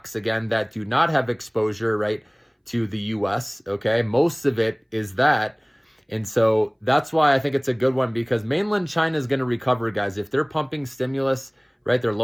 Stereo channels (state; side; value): identical; both; correlation 1.00